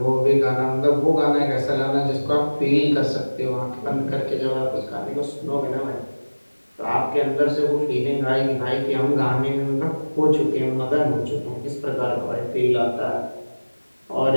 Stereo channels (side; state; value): both; inverted; correlation -1.00